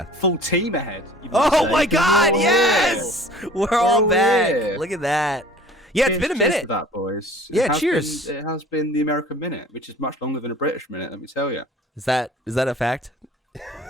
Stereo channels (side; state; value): both; normal; correlation 0.47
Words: Full team ahead. Oh my God, yes! We're all back. Here. Look at that. Yeah, it's been a minute. Cheers to that, boys. Yeah, cheers. It has been the American minute, which is much longer than a British minute, let me tell you. Is that a fact?